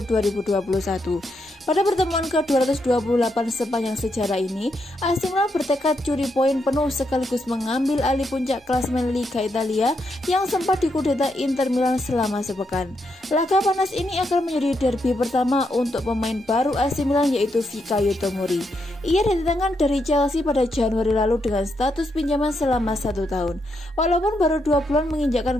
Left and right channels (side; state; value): both; normal; correlation 0.80